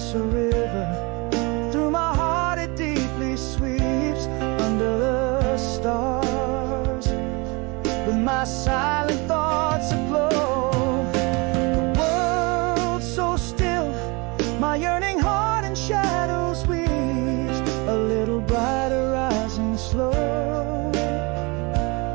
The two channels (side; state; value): left; quieter; 27.8 dB